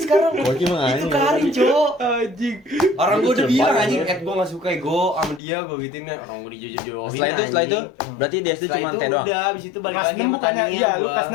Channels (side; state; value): right; drops out; at 5.4 s